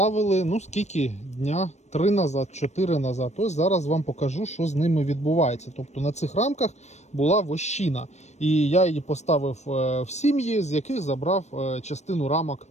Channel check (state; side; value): late; right; 0.33 ms